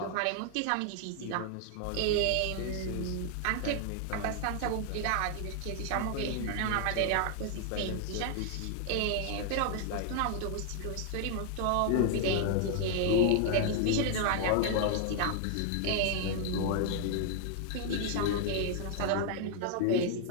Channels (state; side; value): different; both; correlation 0.00